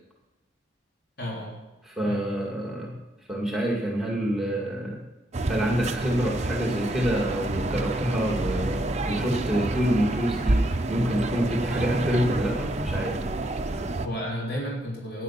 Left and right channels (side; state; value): both; normal; correlation 0.76